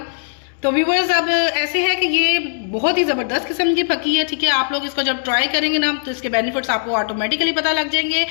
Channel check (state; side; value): silent; right; 67 dB below the other